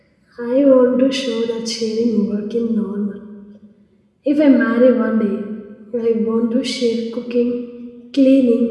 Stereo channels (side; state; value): both; identical; correlation 1.00